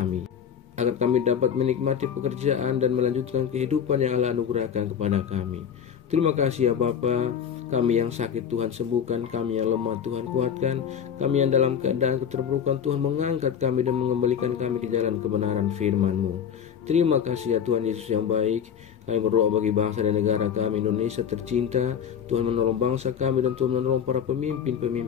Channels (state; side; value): quieter; right; 8.1 dB